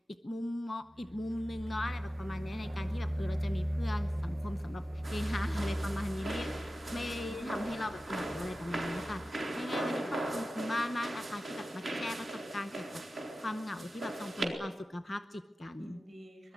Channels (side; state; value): both; normal; correlation 0.94